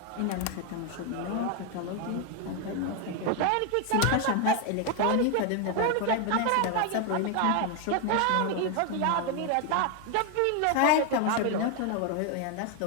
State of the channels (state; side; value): different; both; correlation 0.01